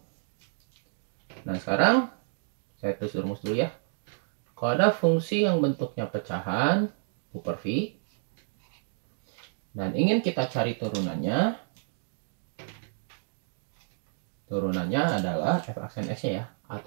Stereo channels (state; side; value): silent; left; digital silence